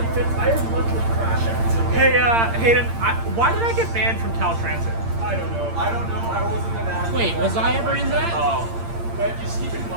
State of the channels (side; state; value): left; late; 8.8 ms